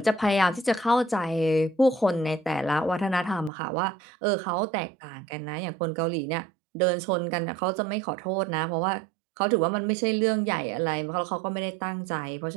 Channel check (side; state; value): left; drops out; at 3.5 s